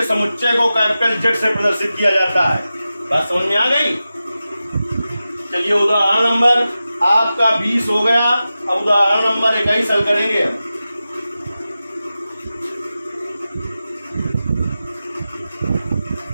समुच्चय को कैपिटल Z से प्रदर्शित किया जाता है। बात समझ में आ गई। चलिए उदाहरण नंबर आपका 20 हो गया। अब उदाहरण नंबर 21 हल करेंगे।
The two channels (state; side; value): inverted; both; correlation -0.93